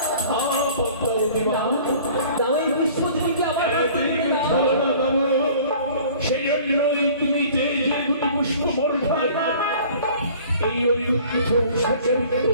দাও এই পুষ্প দিকে আমার সেই জন্যই তুমি যে যে দুটি পুষ্প বর্ষায় এই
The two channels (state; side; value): inverted; both; correlation -0.49